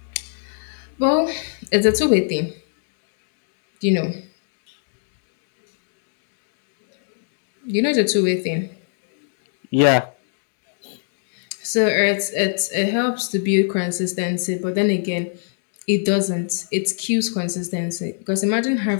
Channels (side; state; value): right; silent; digital silence